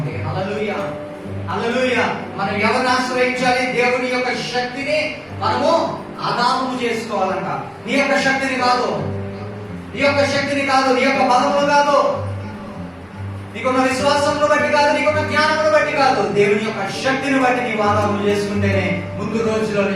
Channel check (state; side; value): identical; both; correlation 1.00